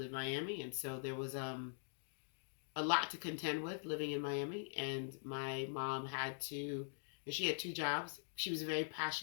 Miami, and so there was a lot to contend with living in Miami. And my mom she had two jobs. She was a very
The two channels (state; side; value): silent; right; digital silence